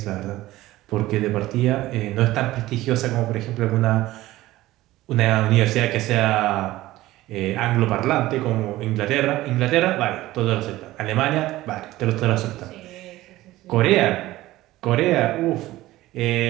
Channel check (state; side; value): quieter; left; 16.7 dB